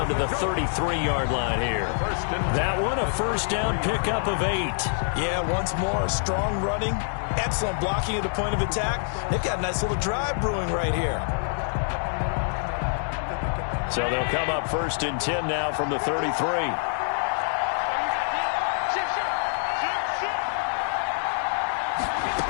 to the 33-yard line here. That one, a first down pickup of 8. Yeah, once more, strong running, excellent blocking at the point of attack. They've got a nice little drive brewing right here. So they'll come up first and 10 now from the 33.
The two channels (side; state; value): right; silent; digital silence